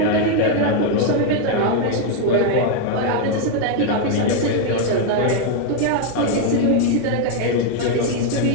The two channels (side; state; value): both; different; correlation 0.01